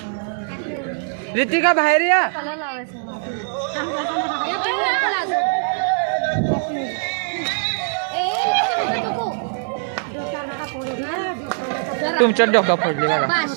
रितिका बाहेर या तुमच्या डोका फोडली बघा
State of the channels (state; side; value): silent; left; digital silence